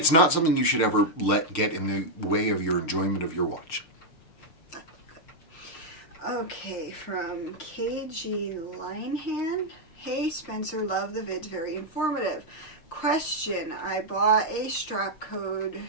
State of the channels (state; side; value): late; right; 6.5 ms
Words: not something you should ever let get in the way of your enjoyment of your watch. Okay, from KG Linehan. Hey Spencer, love the vids, very informative. Question, I bought a strap code